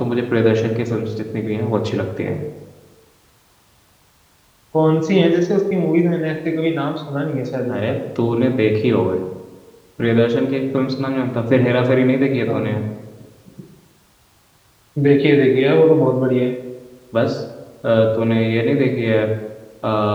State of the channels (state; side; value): identical; both; correlation 1.00